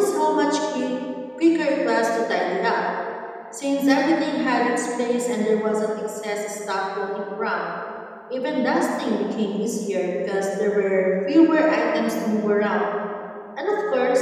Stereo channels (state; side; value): identical; both; correlation 1.00